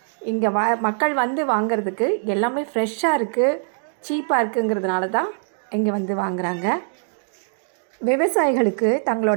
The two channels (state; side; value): silent; left; digital silence